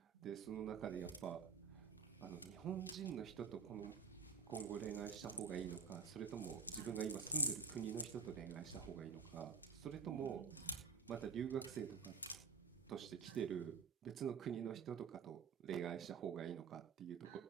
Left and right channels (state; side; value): quieter; left; 5.5 dB